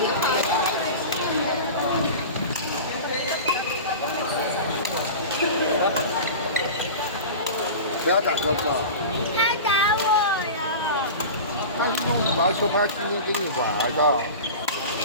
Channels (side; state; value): both; inverted; correlation -0.31